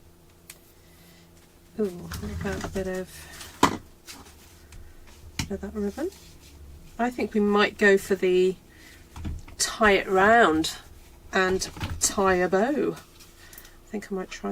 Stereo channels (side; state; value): both; identical; correlation 1.00